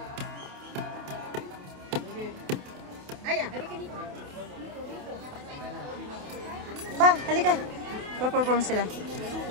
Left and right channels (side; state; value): left; late; 28 ms